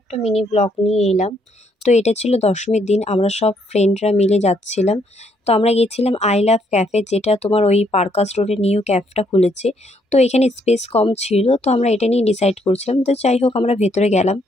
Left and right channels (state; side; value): normal; both; correlation 0.71